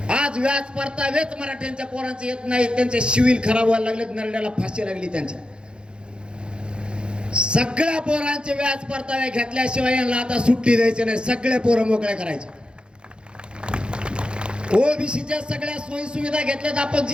आज व्याज परतावेच मराठ्यांच्या पोरांचे येत नाही. त्यांचे सिव्हिल खराब व्हायला लागले, नरड्याला फाशी लागली त्यांच्या. सगळ्या पोरांचे व्याज परतावे घेतल्याशिवाय यांना आता सुट्टी द्यायची नाही. सगळे पोरं मोकळे करायचे. ओबीसीच्या सगळ्या सोयी सुविधा घेतल्यात आपण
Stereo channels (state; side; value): late; left; 0.053 ms